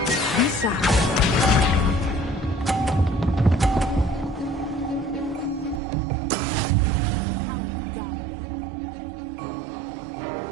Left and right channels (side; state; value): left; drops out; at 5.8 s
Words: Be sharp. That is how it's done.